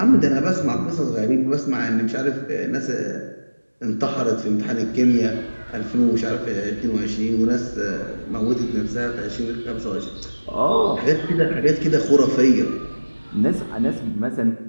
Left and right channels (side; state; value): both; inverted; correlation -1.00